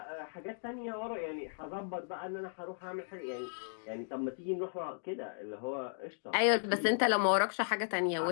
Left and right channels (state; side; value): silent; right; digital silence